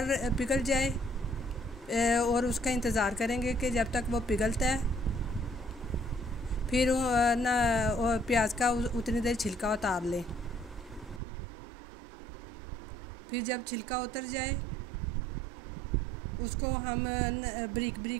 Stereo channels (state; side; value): drops out; left; at 11.2 s